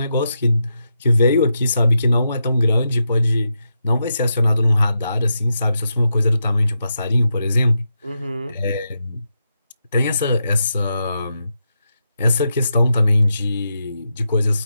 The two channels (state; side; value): inverted; both; correlation -0.85